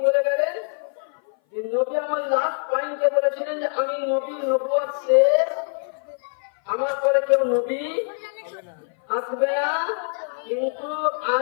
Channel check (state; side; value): silent; right; 58 dB below the other